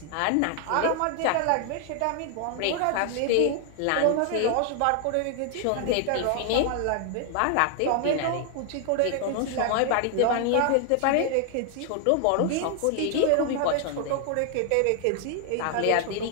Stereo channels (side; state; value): both; different; correlation 0.00